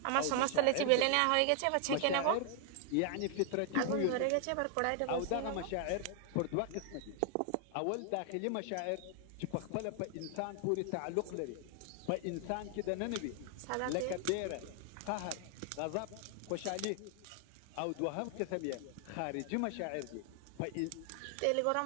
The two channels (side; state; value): both; different; correlation 0.00